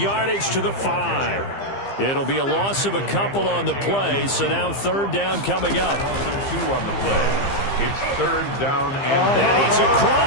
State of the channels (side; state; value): right; late; 15 ms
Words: to the 5. It'll be a loss of a couple on the play, so now third down coming up. 2 on the play. It's third down And he's